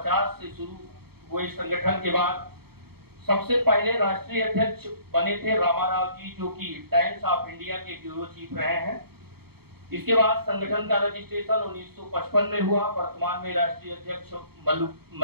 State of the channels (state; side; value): late; left; 0.96 ms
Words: से शुरू हुए संगठन के बाद सबसे पहले राष्ट्रीय अध्यक्ष बने थे रामाराव जी, जो कि टाइम्स ऑफ इंडिया के ब्यूरो चीफ रहे हैं। इसके बाद संगठन का रजिस्ट्रेशन 1955 में हुआ। वर्तमान में राष्ट्रीय अध्यक्ष